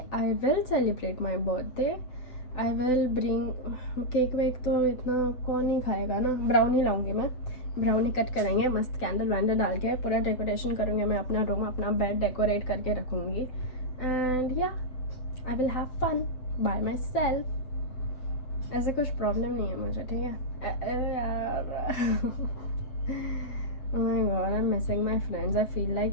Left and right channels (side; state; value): right; late; 7.9 ms